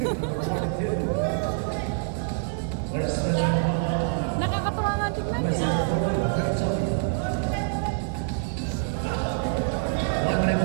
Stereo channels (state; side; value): silent; left; digital silence